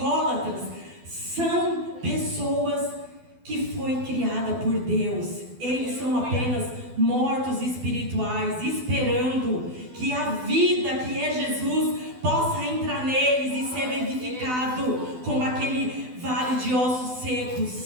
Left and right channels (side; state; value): left; late; 12 ms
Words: são pessoas que foi criada por Deus. Eles são apenas mortos espirituais, esperando que a vida que é Jesus possa entrar neles e ser vivificado como aquele vale de ossos